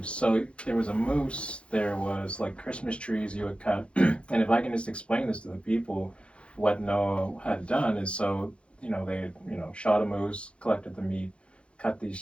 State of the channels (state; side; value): late; right; 0.059 ms